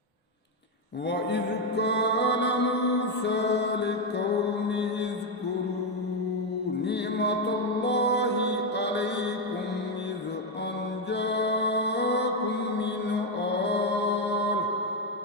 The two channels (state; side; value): normal; both; correlation 0.06